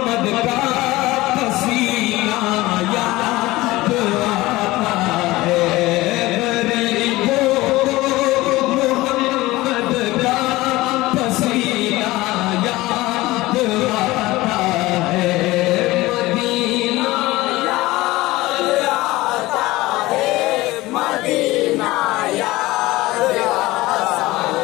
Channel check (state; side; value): quieter; right; 19.1 dB